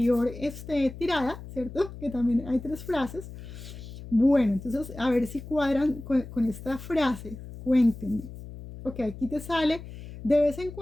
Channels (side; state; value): left; noise; hum, 13 dB below the sound